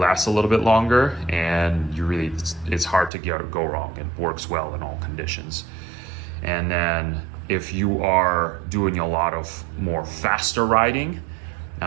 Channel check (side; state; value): left; drops out; at 3.1 s